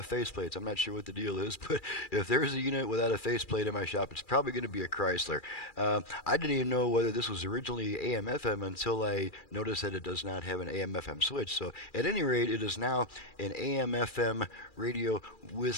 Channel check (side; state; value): right; late; 2.4 ms